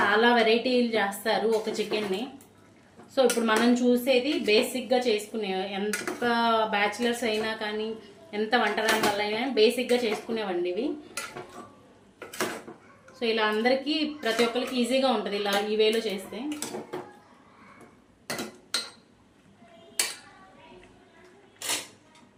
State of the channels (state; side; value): identical; both; correlation 1.00